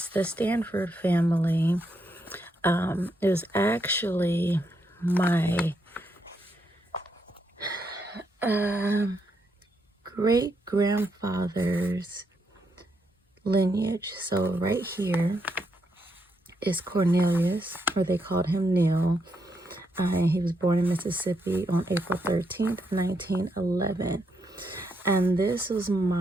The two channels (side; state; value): both; normal; correlation 0.79